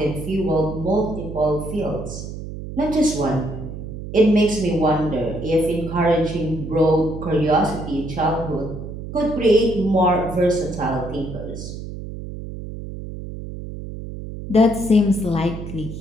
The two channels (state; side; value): noise; right; hum, 9 dB below the sound